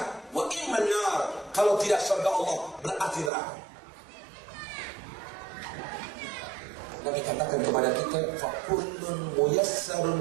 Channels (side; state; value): left; drops out; at 3.3 s